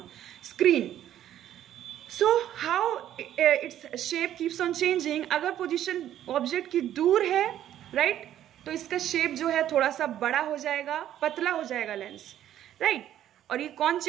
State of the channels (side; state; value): left; quieter; 11.6 dB